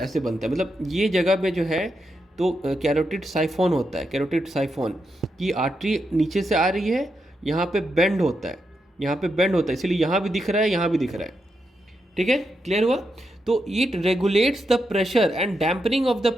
बनता है, मतलब ये जगह में जो है तो कैरोटिड साइफोन होता है, कैरोटिड साइफोन की आर्टरी नीचे से आ रही है, यहाँ पे बेंड होता है, यहाँ पे बेंड होता है, इसलिए यहाँ भी दिख रहा है, यहाँ भी दिख रहा है। ठीक है, क्लियर हुआ। तो it regulates the pressure and dampening of the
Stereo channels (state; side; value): normal; both; correlation 0.84